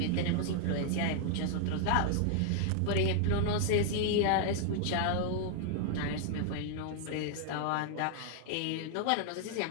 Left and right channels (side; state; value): both; different; correlation 0.00